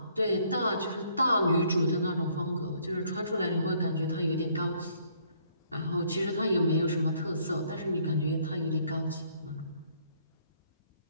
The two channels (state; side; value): inverted; both; correlation -0.65